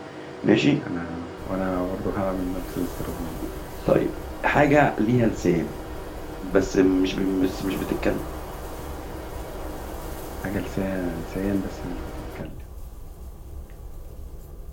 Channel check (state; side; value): identical; both; correlation 1.00